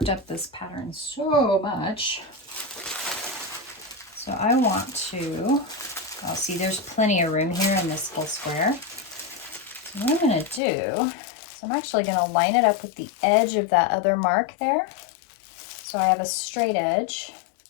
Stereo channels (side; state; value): right; drops out; at 10.6 s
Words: up this pattern so much. So I want to, oh, see, there's plenty of room here in this little square. So what I'm going to do is I'm actually going to line it up with the edge of that other mark there. So I have a straight edge.